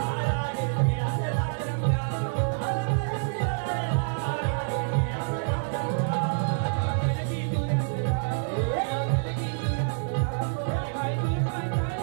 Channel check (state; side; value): silent; left; digital silence